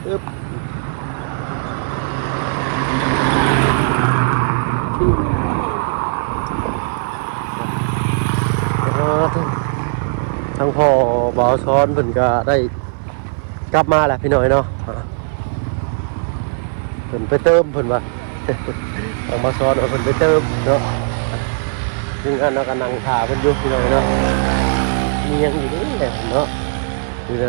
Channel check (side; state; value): left; silent; 57 dB below the other